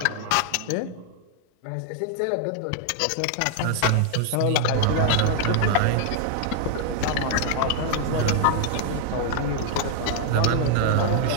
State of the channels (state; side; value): different; both; correlation 0.00